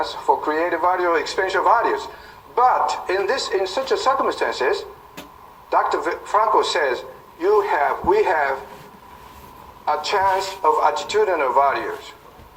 for creative value or experiential values. But in such a circumstances, Dr. Franco says we have a chance of attitudinal values.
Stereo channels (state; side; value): identical; both; correlation 1.00